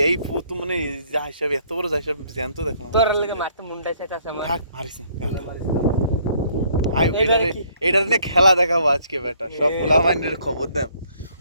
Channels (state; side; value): inverted; both; correlation -0.64